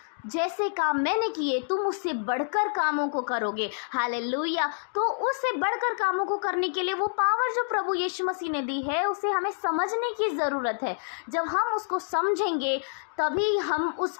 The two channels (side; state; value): right; silent; digital silence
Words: जैसे काम मैंने किए तुम उससे बढ़कर कामों को करोगे। हालेलुया। तो उससे बढ़कर कामों को करने के लिए वो पावर जो प्रभु यीशु मसीह ने दी है, उसे हमें समझने की ज़रूरत है। जब हम उसको समझेंगे तभी हम